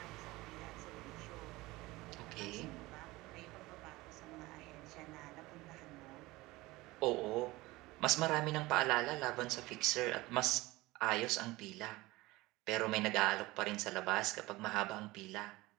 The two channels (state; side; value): quieter; left; 20.2 dB